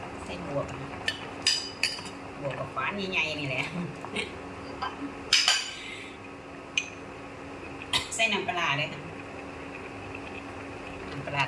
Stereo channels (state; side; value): identical; both; correlation 1.00